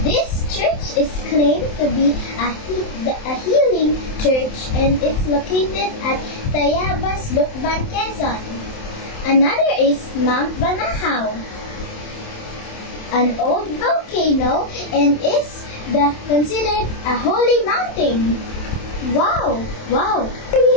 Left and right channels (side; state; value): right; late; 27 ms